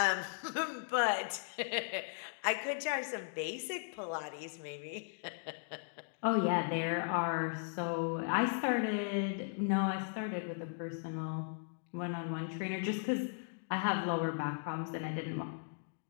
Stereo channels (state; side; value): silent; right; digital silence